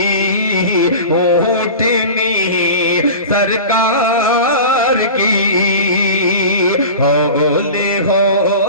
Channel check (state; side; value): inverted; both; correlation -0.33